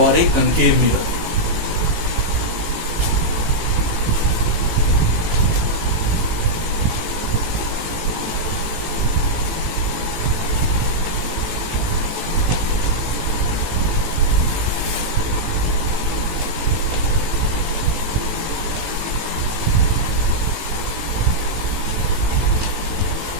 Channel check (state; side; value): late; left; 18 ms